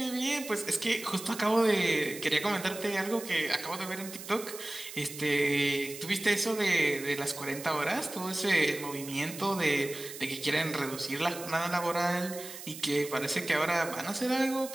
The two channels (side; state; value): right; noise; hiss, 12 dB below the sound